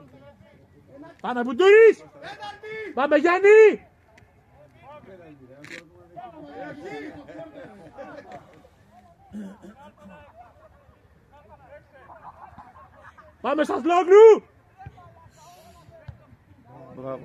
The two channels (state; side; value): identical; both; correlation 1.00